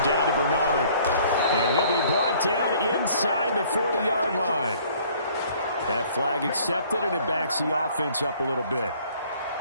down to Bernard. And he'll be brought down inside the 40-yard line. That flag accepted, and it backs the offense up a little bit.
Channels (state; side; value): inverted; both; correlation -0.57